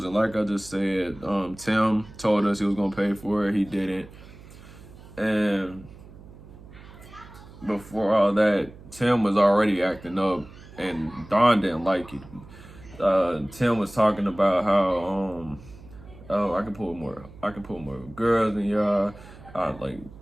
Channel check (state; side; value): noise; right; hum, 19 dB below the sound